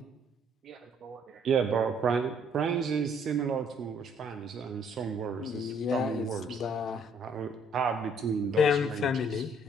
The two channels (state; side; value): normal; both; correlation 0.63